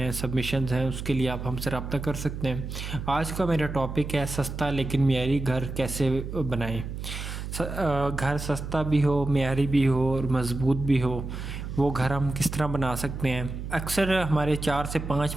सबमिशंस हैं, उसके लिए आप हमसे रब्ता कर सकते हैं। आज का मेरा टॉपिक है सस्ता लेकिन मियारी घर कैसे बनाएं। घर सस्ता भी हो, मियारी भी हो और मज़बूत भी हो, वो घर हम किस तरह बना सकते हैं। अक्सर हमारे 4 से 5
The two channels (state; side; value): noise; right; hum, 7 dB below the sound